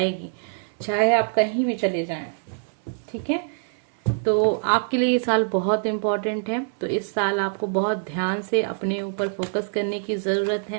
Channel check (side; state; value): left; silent; 62 dB below the other